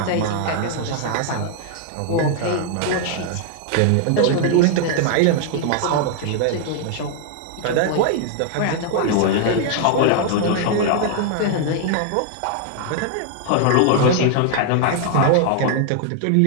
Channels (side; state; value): both; different; correlation 0.00